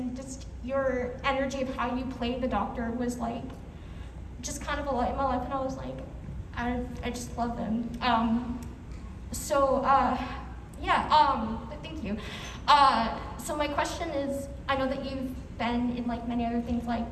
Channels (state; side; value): identical; both; correlation 1.00